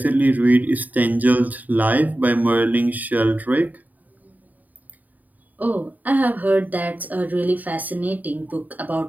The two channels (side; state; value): left; late; 0.080 ms